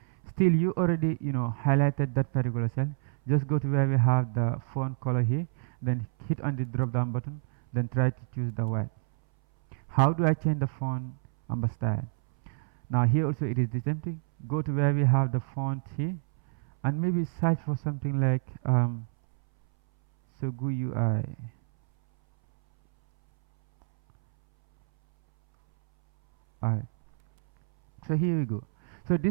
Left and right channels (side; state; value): left; silent; 59 dB below the other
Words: Still you already highlighted that particular cell. Just go to where we have the font color here, then hit on the drop down button, then try to choose the white. How do I change the font style? Now here also it is the same thing. Go to where we have the font here and maybe search for something like Sogu UI. Alright, so here we go. So